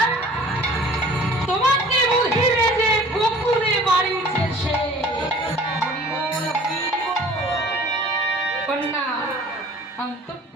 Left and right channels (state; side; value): normal; both; correlation 0.48